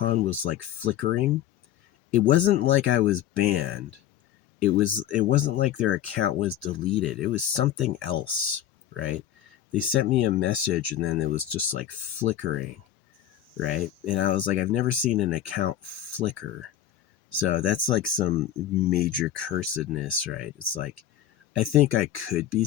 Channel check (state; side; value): quieter; right; 11.2 dB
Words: was like flickering. It wasn't like I was banned. It wasn't like their account was deleted. It was something else, right? They sent me a message and then it was just like flickering, right? And I was like, I've never seen an account flicker. So that's like some major cursedness, right? It's like, I think I could be